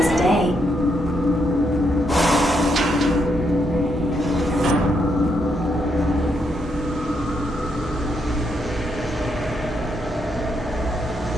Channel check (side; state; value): both; normal; correlation 0.78